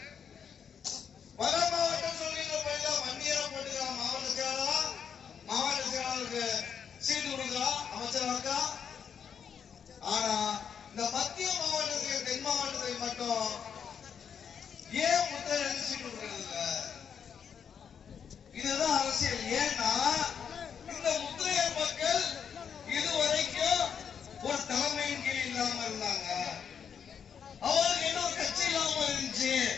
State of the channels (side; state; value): right; quieter; 7.4 dB